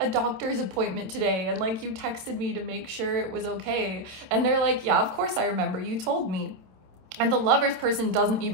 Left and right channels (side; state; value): left; late; 27 ms